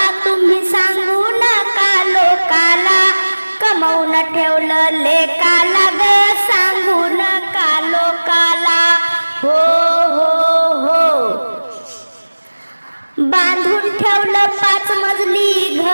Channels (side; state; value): both; inverted; correlation -1.00